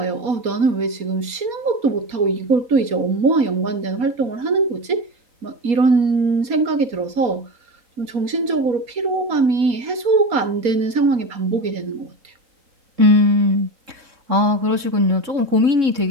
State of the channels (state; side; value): late; left; 4.2 ms